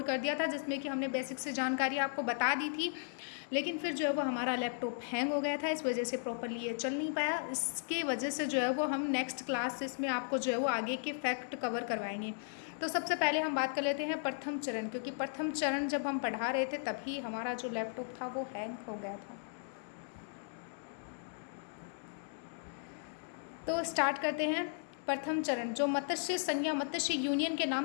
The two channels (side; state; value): right; silent; digital silence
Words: कर दिया था जिसमें कि हमने बेसिक से जानकारी आपको बता दी थी। लेकिन फिर जो है वो हमारा लैपटॉप हैंग हो गया था, इस वजह से प्रॉपरली ये चल नहीं पाया। इसके वजह से जो है वो हम नेक्स्ट क्लास इसमें आपको जो है वो आगे के फैक्ट कवर करवाएंगे। तो सबसे पहले हम बात कर लेते हैं प्रथम चरण, क्योंकि प्रथम चरण जब हम पढ़ा रहे थे तभी हमारा जो लैपटॉप था वो हैंग हो गया था। तो स्टार्ट करते हैं। प्रथम चरण जो मत्स्य संघ या मत्स्य यूनियन के